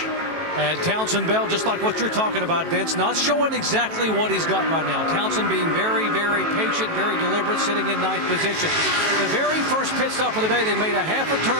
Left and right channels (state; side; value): late; left; 18 ms